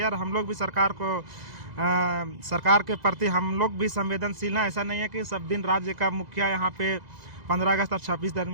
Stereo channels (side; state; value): left; late; 2.0 ms